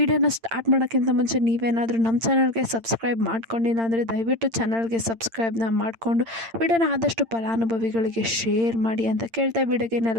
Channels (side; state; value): left; late; 8.8 ms